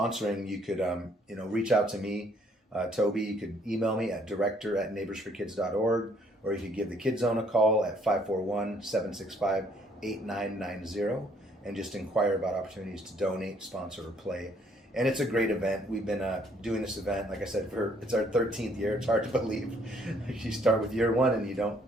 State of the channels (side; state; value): both; normal; correlation 0.65